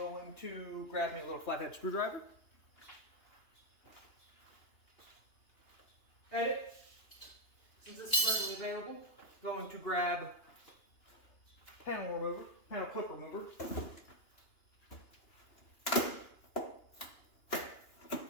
to grab me a little flathead screwdriver. Edit. Since this is readily available, going to grab panel clip remover.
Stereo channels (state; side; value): late; right; 2.9 ms